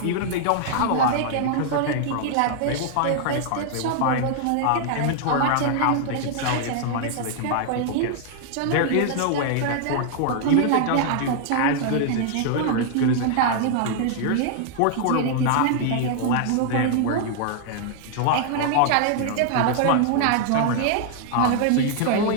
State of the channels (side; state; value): both; different; correlation 0.00